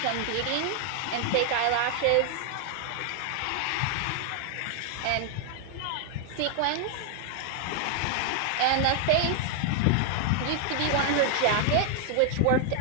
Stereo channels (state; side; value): different; both; correlation 0.00